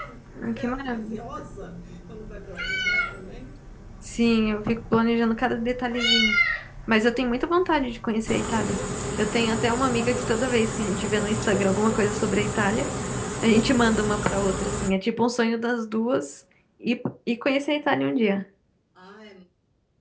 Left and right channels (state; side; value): identical; both; correlation 1.00